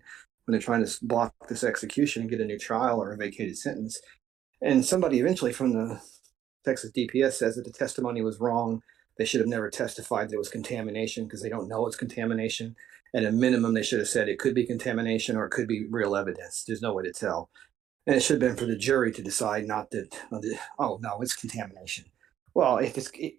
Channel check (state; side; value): quieter; left; 10.7 dB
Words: they're trying to block this execution and get a new trial or a vacated sentence. And somebody eventually from the Texas DPS says that the testimony was wrong. They should have never testified there was contamination because they don't know it's contamination. At a minimum, they should have said it could be contamination or it could be real evidence. There's no way to tell. And it should have been for the jury to decide, not that, oh, no, it's contamination. Well,